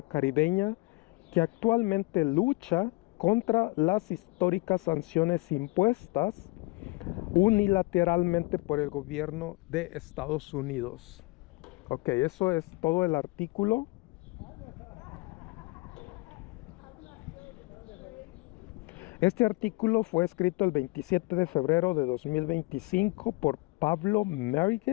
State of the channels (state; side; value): quieter; right; 24.4 dB